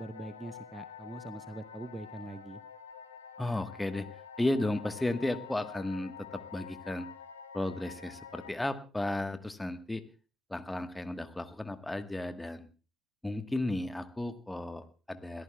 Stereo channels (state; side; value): normal; both; correlation 0.91